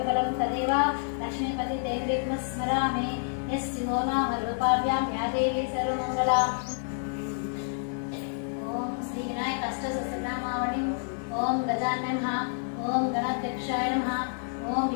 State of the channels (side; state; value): right; silent; digital silence